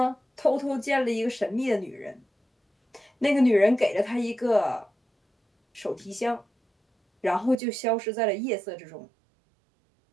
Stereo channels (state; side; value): drops out; left; at 7.6 s